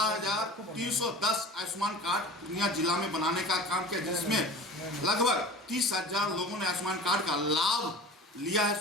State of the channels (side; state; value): both; normal; correlation 0.38